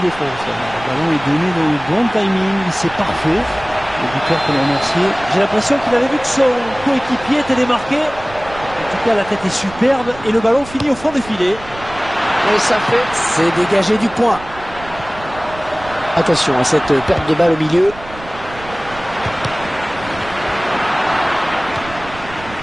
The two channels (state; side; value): noise; right; rumble, 16 dB below the sound